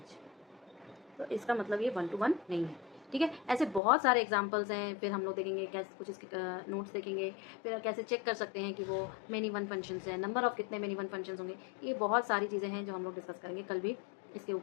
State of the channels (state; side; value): drops out; right; at 3.8 s